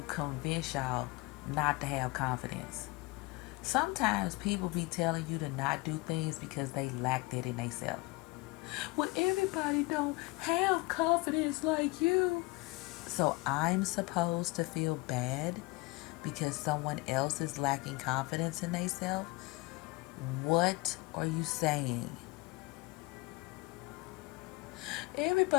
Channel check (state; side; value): quieter; right; 23.1 dB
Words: convince y'all not to have confidence. Sometimes people be telling you to not do things because they lack it in themselves. Well, everybody don't have confidence like you. So I'm supposed to feel bad because someone else is lacking confidence in themselves? What are you saying?